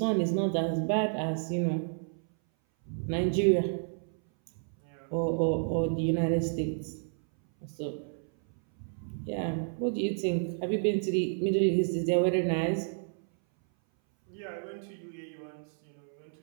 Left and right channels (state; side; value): silent; left; 57 dB below the other